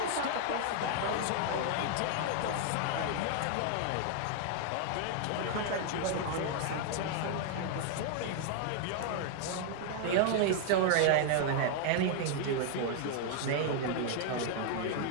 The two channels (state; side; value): different; both; correlation 0.00